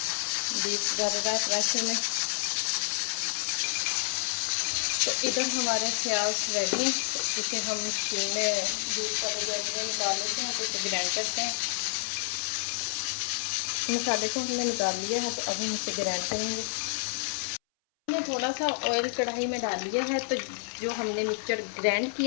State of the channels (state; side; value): silent; right; 58 dB below the other